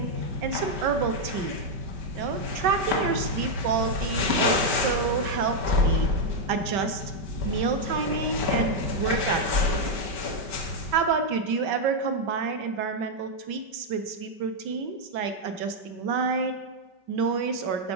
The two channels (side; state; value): left; late; 5.2 ms